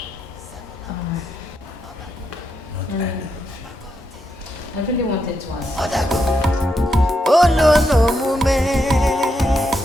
I really wanted to ask. Oh no mume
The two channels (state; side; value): normal; both; correlation 0.82